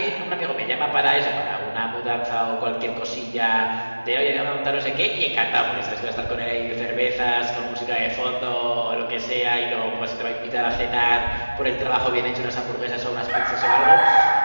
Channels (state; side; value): inverted; both; correlation -1.00